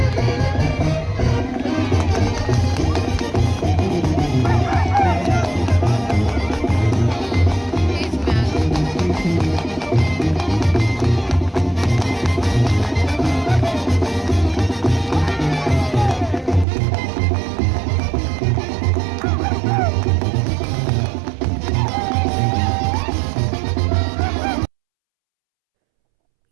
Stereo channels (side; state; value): left; drops out; at 16.7 s